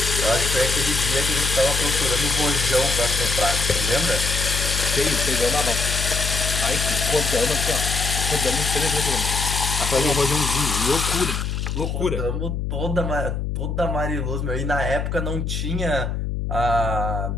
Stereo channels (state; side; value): noise; left; hum, 2 dB below the sound